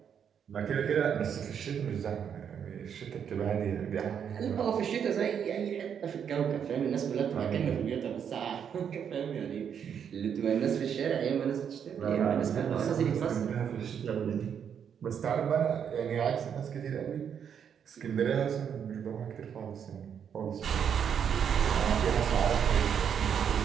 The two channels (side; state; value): left; quieter; 8.0 dB